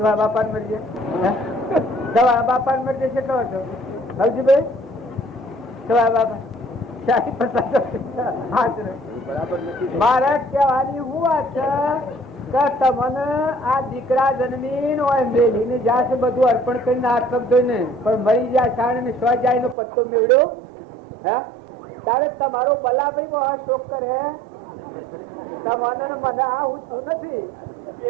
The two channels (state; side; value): drops out; left; at 19.8 s